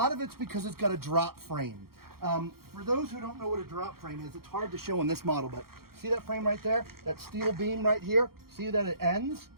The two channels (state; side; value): late; left; 0.94 ms